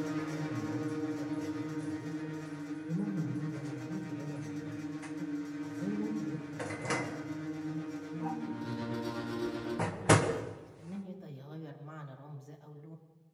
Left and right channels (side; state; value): both; identical; correlation 1.00